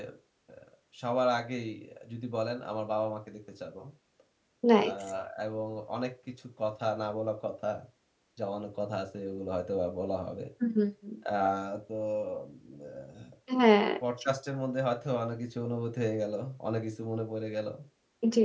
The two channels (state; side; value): identical; both; correlation 1.00